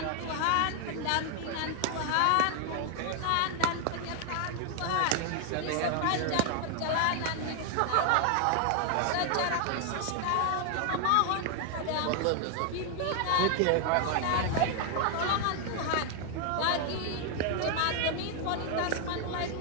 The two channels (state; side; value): different; both; correlation 0.00